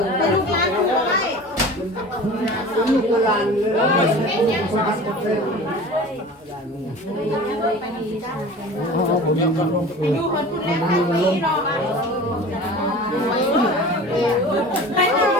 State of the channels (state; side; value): normal; both; correlation 0.39